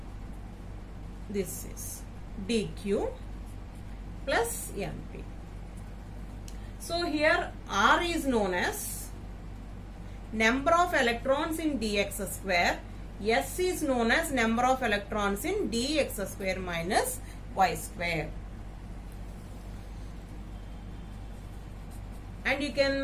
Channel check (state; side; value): identical; both; correlation 1.00